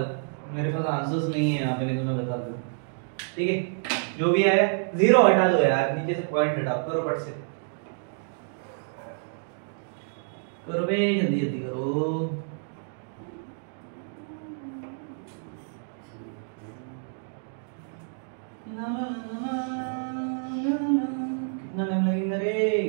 मेरे पास आंसर्स नहीं है यहाँ पे, नहीं तो मैं बता दूं। ठीक है, जो भी आया 0 हटा दो यार, नीचे से पॉइंट हटाओ, करो फट से करो बे, जल्दी जल्दी करो। कितना टाइम लगेगा रे?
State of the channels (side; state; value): left; silent; digital silence